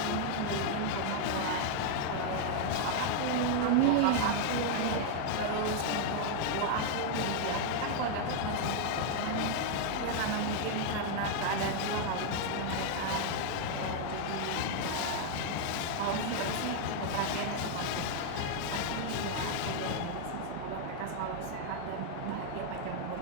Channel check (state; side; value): different; both; correlation 0.00